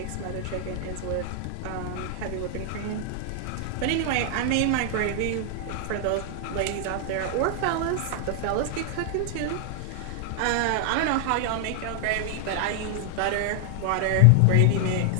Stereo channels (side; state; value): both; different; correlation 0.00